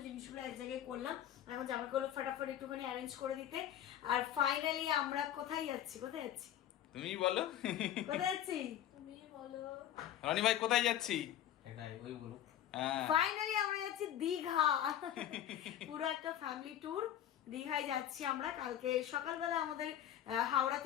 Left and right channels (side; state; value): right; quieter; 11.1 dB